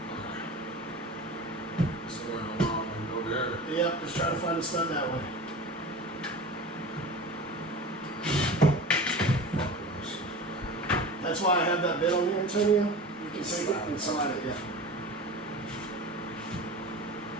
Somewhere in the wall and go there. Yep, just try to find a stud that way. That's why I have that bit on here, Antonio. You can take it and slide it, yeah.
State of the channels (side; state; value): both; normal; correlation 0.34